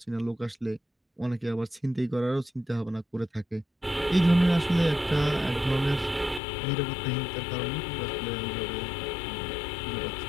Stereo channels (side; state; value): right; drops out; at 6.4 s